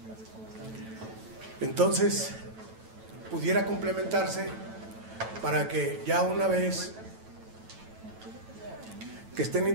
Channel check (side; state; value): left; late; 9.1 ms